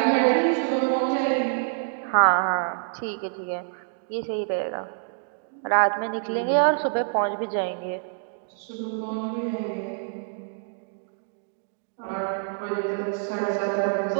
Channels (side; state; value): left; silent; digital silence